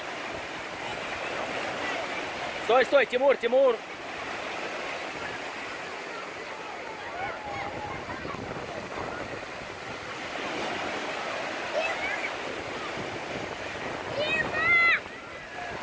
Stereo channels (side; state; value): both; identical; correlation 1.00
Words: Стой, стой, Тимур, Тимур!